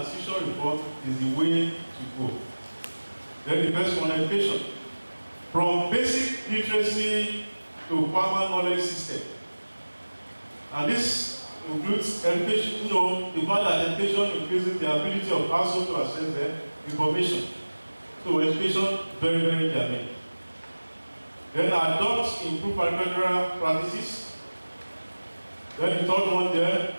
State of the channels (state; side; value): inverted; both; correlation -1.00